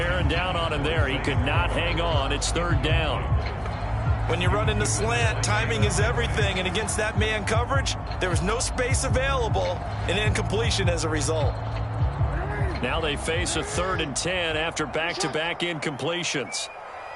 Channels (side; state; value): both; identical; correlation 1.00